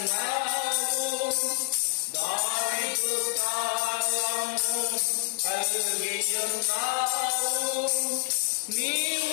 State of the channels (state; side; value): silent; right; digital silence